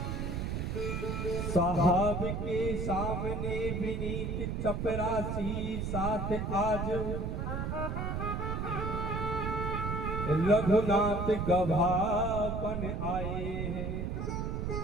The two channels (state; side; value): noise; right; rumble, 2 dB below the sound